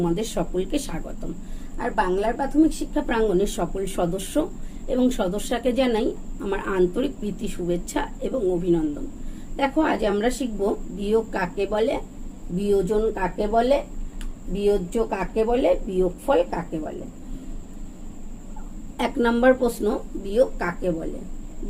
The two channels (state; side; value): identical; both; correlation 1.00